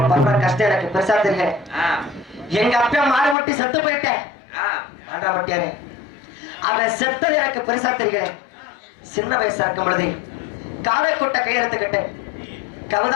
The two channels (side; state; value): right; drops out; at 3.4 s